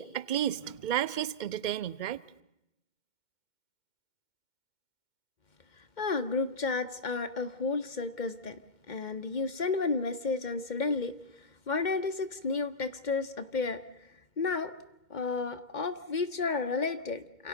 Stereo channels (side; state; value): right; late; 2.1 ms